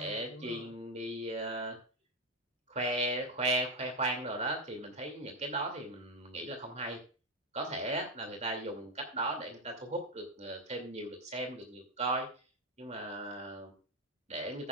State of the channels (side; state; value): both; normal; correlation 0.07